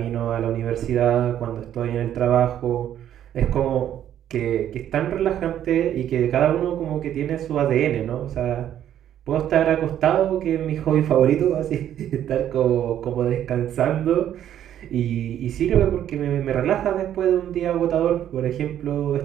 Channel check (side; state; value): left; quieter; 10.8 dB